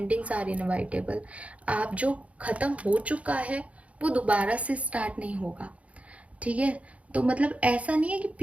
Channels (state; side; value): late; left; 0.065 ms